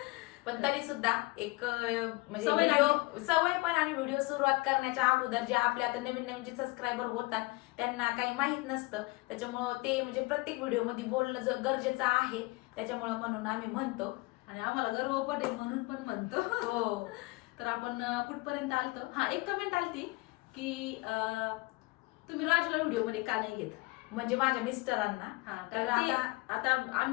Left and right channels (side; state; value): right; quieter; 23.5 dB